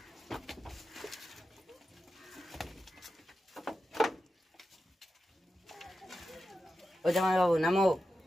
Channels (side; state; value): both; normal; correlation 0.91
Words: ओ जमाई बाबू नामो।